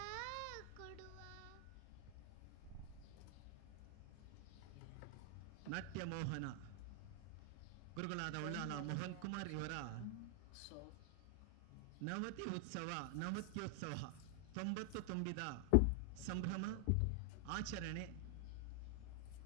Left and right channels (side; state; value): both; different; correlation 0.00